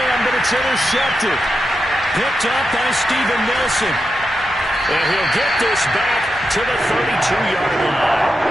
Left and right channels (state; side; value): normal; both; correlation 0.87